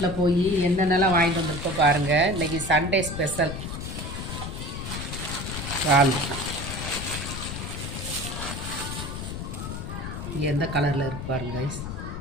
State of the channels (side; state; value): left; noise; rumble, 6 dB below the sound